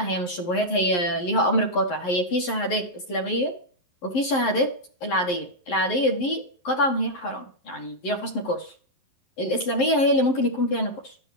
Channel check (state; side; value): late; right; 11 ms